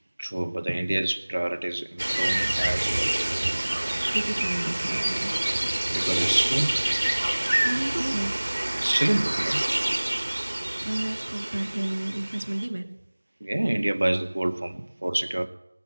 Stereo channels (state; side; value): inverted; both; correlation -1.00